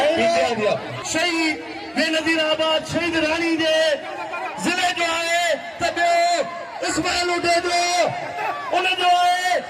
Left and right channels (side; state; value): both; identical; correlation 1.00